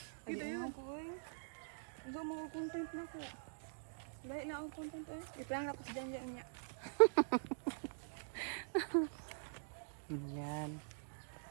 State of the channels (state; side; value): silent; left; digital silence